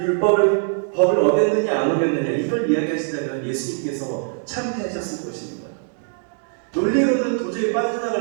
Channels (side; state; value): left; silent; digital silence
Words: 법을 어겼느냐 안 어겼느냐 이걸 이야기하시다면 예수님께서 참패하셨을 것입니다. 논리로는 도저히